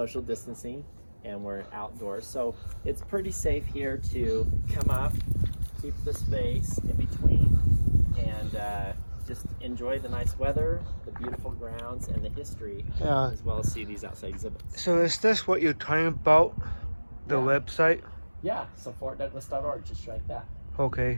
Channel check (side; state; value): both; inverted; correlation -1.00